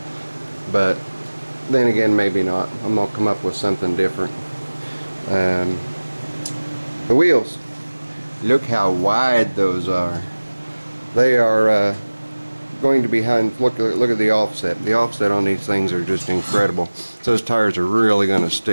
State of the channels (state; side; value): inverted; both; correlation -1.00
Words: but then again maybe not. I'm going to come up with something different. The wheels, look how wide those are. They are going to be look at the offset. The offset on these things are just incredible. So those tires are really going to